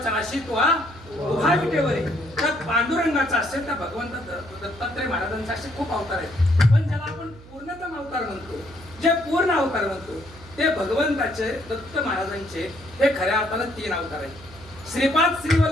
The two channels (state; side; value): noise; right; hum, 20 dB below the sound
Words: नाशी तो हा उभा विटेवर आहे. त्या पांडुरंगाचा असेल, त्या भगवंत दत्तात्रय महाराजांचा असे खूप अवतार आहेत. पण ज्याला आपण पूर्णतम अवतार म्हणतो, जे पूर्ण अवतार म्हणतो, ते भगवंताचे दत्त महाराजांचे हे खऱ्या अर्थानं 3 अवतार आहेत. श्रीपाद